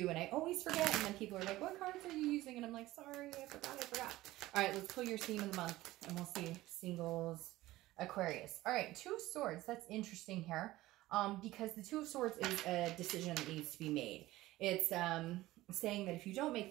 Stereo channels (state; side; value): quieter; left; 17.1 dB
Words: and I always forget, and then people are like, what cards are you using? And I'm like, sorry, I forgot. All right, let's pull your theme of the month, and we'll see singles Aquarius. All right, 2 of Swords. That's interesting here, because the 2 of Swords is a decision that needs to be made. It's saying that if you don't make